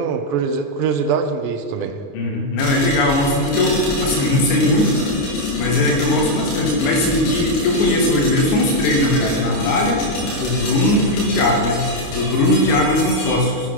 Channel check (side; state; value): right; late; 29 ms